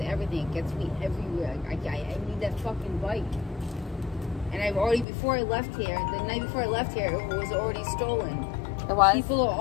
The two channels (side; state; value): right; drops out; at 5.1 s